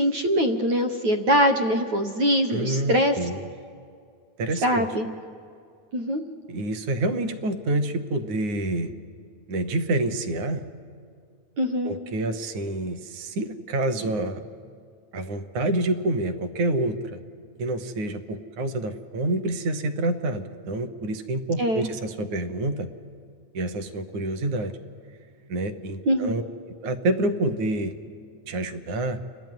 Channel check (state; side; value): late; left; 9.5 ms